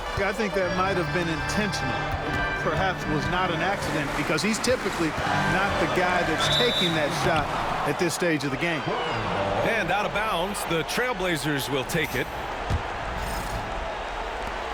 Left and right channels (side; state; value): both; identical; correlation 1.00